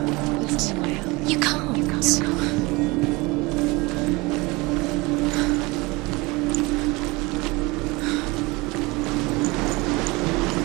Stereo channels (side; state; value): left; quieter; 24.1 dB